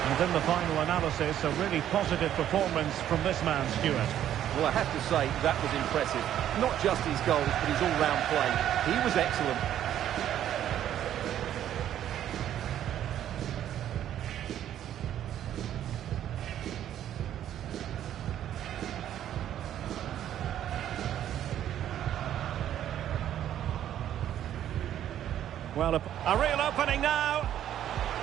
And in the final analysis, a really positive performance from this man, Stuart. Well, I have to say, that was impressive. Not just his goals, but his all-round play. He was excellent. Well, a real opening now.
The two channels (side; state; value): left; quieter; 11.1 dB